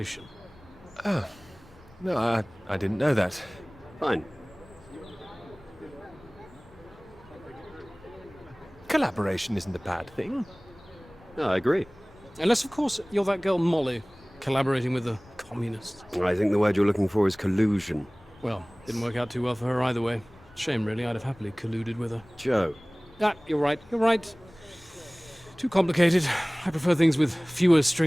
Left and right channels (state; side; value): noise; left; rumble, 26 dB below the sound